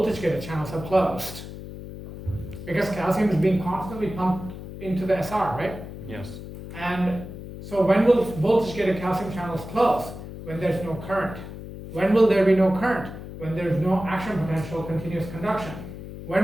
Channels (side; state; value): left; noise; hum, 11 dB below the sound